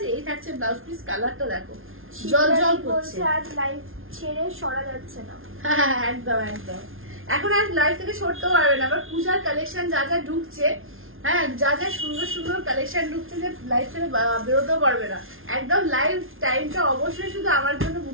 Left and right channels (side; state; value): left; late; 0.60 ms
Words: এই থাকছে ব্লাউজ পিস। কালারটা দেখো জল করছে। আজ লাইভ ছেড়ে সরা যাচ্ছে না। হ্যাঁ একদম একদম, এখন আর লাইভ থেকে সরতেও পারবে না। আবার পূজার কালেকশন যা যা ঢুকছে, হ্যাঁ যা যা সুন্দর সুন্দর কালেকশন ঢুকছে, যে লাইভ থেকে বেরোতেও পারবে না। একদম লাইভ টাইমটা অবশ্যই শুধু আমার জন্য